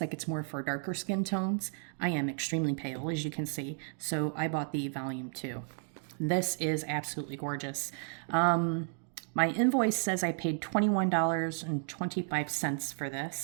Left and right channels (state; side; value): silent; left; 56 dB below the other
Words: like it's more for darker skin tones. I am extremely pale, as you can see, so I bought the volume 2. This is absolutely gorgeous. My invoice says I paid $21.25 for